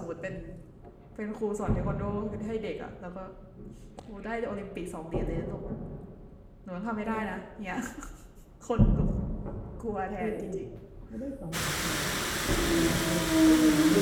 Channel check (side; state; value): both; identical; correlation 1.00